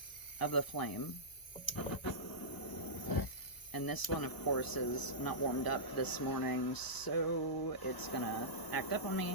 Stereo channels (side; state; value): right; late; 1.0 ms